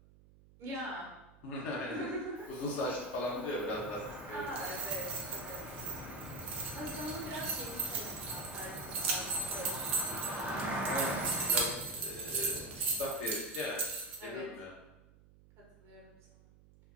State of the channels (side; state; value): right; noise; hum, 24 dB below the sound